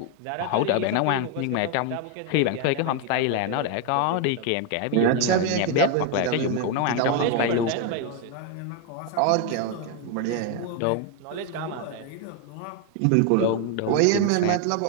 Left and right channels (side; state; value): both; different; correlation 0.01